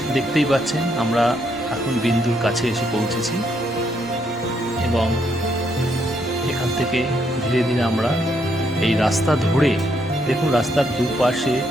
দেখতেই পাচ্ছেন আমরা এখন বিন্দুর কাছে এসে পৌঁছেছি, এবং এখান থেকে ধীরে ধীরে আমরা এই রাস্তা ধরে, দেখুন রাস্তার দুপাশে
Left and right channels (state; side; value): noise; left; rumble, 28 dB below the sound